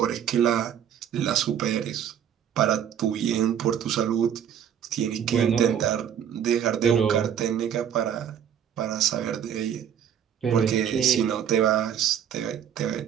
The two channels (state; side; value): quieter; left; 9.1 dB